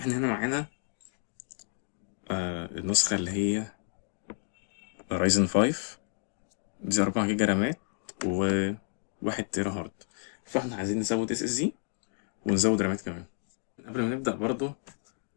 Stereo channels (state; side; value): silent; right; 57 dB below the other